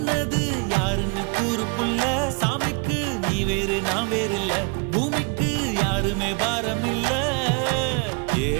யாருன்னு கூறு புள்ள சாமிக்கு நீ வேறு நான் வேறு இல்ல பூமிக்கு யாருமே பாரம் இல்ல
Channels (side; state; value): left; quieter; 33.0 dB